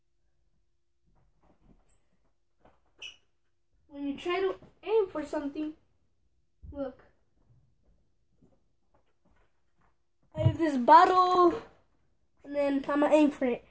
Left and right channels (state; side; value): identical; both; correlation 1.00